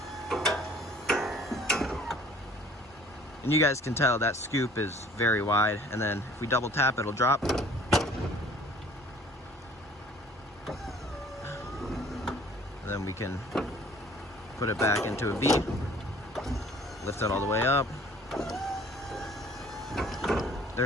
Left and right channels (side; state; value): both; normal; correlation 0.53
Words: And you guys can tell that scoop is very wide. And then if we double tap, it'll drop. And then we can put it back into a V. Lift it all the way up.